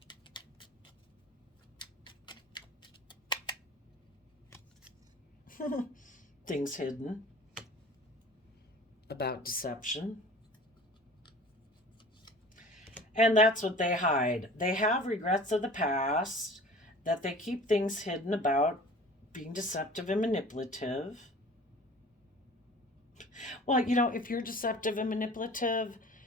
Things hidden about deception. And that's what they hide. They have regrets of the past, that they keep things hidden about being deceptive and manipulative. Well, if you're deceptive and manipulative,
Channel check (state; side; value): normal; both; correlation 0.43